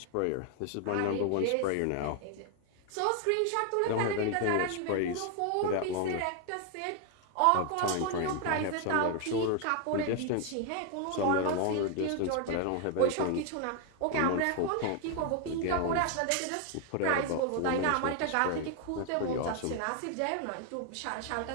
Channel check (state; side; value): different; both; correlation 0.00